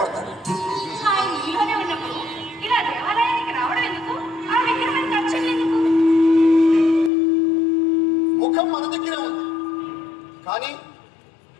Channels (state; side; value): drops out; right; at 7.1 s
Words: ఆయన నీలోనే ఉన్నప్పుడు ఇలా దేవాలయానికి రావడం ఎందుకు? ఆ విగ్రహానికి అర్చన ఎందుకు? ముఖం మన దగ్గరే ఉంది, కానీ